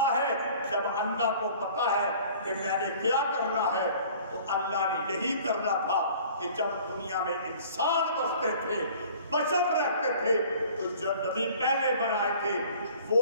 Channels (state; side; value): inverted; both; correlation -0.49